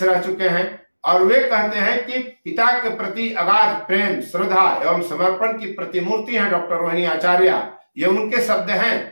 रह चुके हैं, और वे कहते हैं कि पिता के प्रति अगाध प्रेम, श्रद्धा एवं समर्पण की प्रतिमूर्ति हैं डॉक्टर रोहिणी आचार्य। ये उनके शब्द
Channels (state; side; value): inverted; both; correlation -1.00